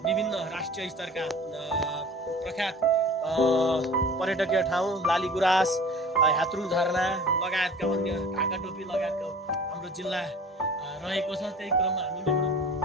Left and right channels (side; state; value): both; normal; correlation 0.43